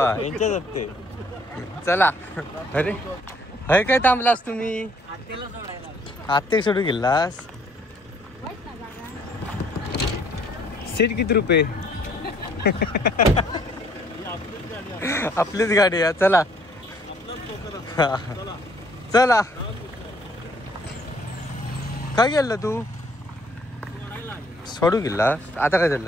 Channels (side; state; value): both; normal; correlation 0.62